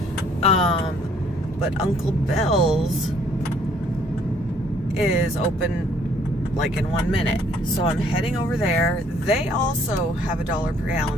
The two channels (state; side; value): normal; both; correlation 0.62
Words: But Uncle Bill's is open like in 1 minute. So I'm heading over there. They also have a dollar per